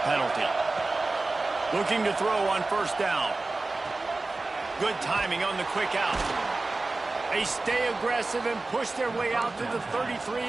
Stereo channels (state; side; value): quieter; left; 3.3 dB